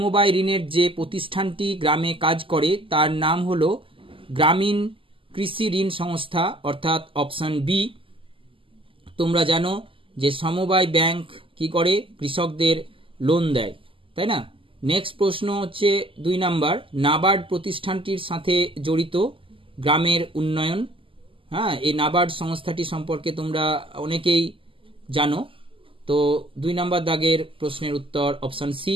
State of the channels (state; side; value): late; left; 0.25 ms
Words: ঋণের যে প্রতিষ্ঠানটি গ্রামে কাজ করে তার নাম হলো গ্রামীণ কৃষি ঋণ সংস্থা, অর্থাৎ অপশন বি। তোমরা জানো যে সমবায় ব্যাংক কি করে, কৃষকদের লোন দেয়, তাই না? নেক্সট প্রশ্ন হচ্ছে 2 নাম্বার, নাবার্ড প্রতিষ্ঠানটির সাথে জড়িত গ্রামের উন্নয়ন। হ্যাঁ, এই নাবার্ড সংস্থাটি সম্পর্কে তোমরা অনেকেই জানো। তো 2 নাম্বার দাগের প্রশ্নের উত্তর অপশন সি।